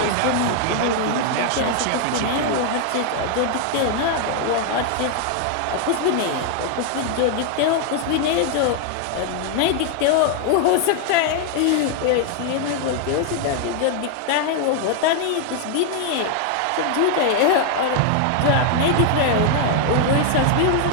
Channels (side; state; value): both; different; correlation 0.00